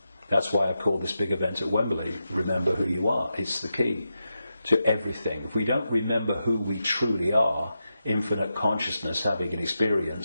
That's why I call this big event at Wembley, Remember Who You Are. It's the key to everything. If we don't remember who we truly are, infinite consciousness having an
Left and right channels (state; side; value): inverted; both; correlation -0.88